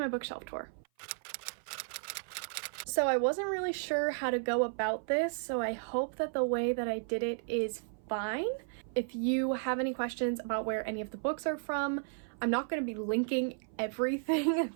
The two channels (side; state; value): left; silent; 55 dB below the other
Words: bookshelf tour. So I wasn't really sure how to go about this, so I hope that the way that I did it is fine. If you have any questions about where any of the books are from, I'm not going to be linking everything